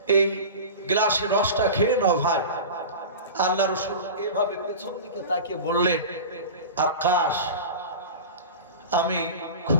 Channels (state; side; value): inverted; both; correlation -0.31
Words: এই গ্লাসের রসটা খেয়ে নাও ভাই। আল্লাহ রাসূল এভাবে পেছন দিকে তাকিয়ে বললেন, আকাশ, আমি